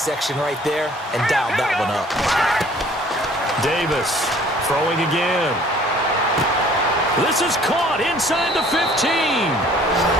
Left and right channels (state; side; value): normal; both; correlation 0.54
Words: right there and dialed that one up. Davis throwing again. This is caught inside the 15.